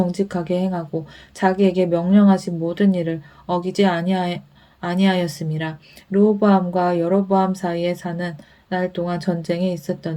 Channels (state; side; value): identical; both; correlation 1.00